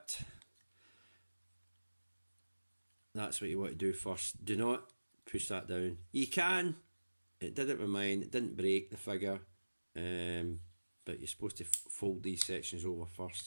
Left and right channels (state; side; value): inverted; both; correlation -1.00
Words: That's what you want to do first. Do not push that down. You can. It did it with mine. It didn't break the figure. But you're supposed to fold these sections over